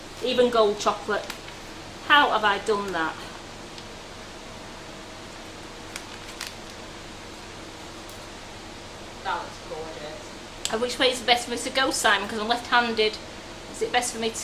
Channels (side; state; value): both; identical; correlation 1.00